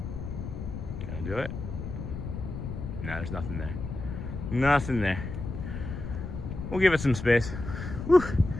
Can I do it? No, there's nothing there. Nothing there. We'll give it some space. Whew.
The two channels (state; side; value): noise; left; rumble, 7 dB below the sound